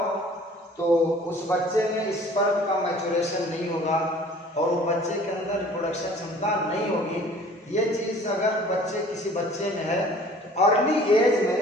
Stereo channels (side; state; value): both; normal; correlation 0.50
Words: तो उस बच्चे में स्पर्म का मैच्योरेशन नहीं होगा और वो बच्चे के अंदर रिप्रोडक्शन क्षमता नहीं होगी। ये चीज़ अगर किसी बच्चे में है तो अर्ली एज में